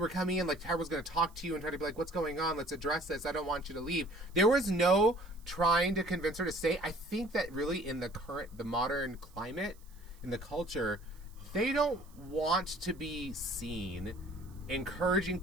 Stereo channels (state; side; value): noise; right; hiss, 28 dB below the sound